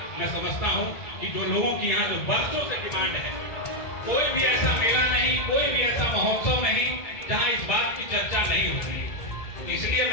मैं समझता हूँ कि जो लोगों की यहाँ जो वर्षों से डिमांड है, कोई भी ऐसा मेला नहीं, कोई भी ऐसा महोत्सव नहीं जहाँ इस बात की चर्चा नहीं होती। इसलिए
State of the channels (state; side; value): late; right; 1.9 ms